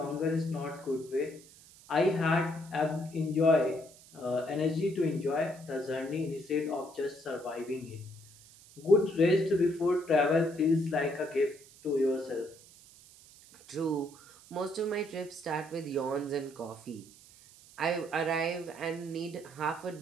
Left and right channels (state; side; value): noise; right; hiss, 22 dB below the sound